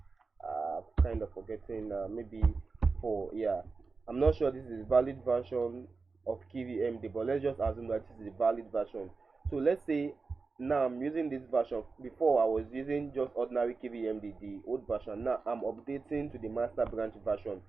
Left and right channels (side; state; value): left; quieter; 4.3 dB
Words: kind of forgetting, maybe 4. Yeah, I'm not sure this is a valid version of KVMD, but let's just assume that this is a valid version. So let's say now I'm using this version. Before I was using just ordinary KVMD, the old version. Now I'm updating to the master branch version.